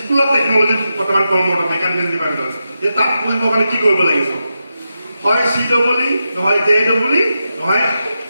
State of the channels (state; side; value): inverted; both; correlation -0.89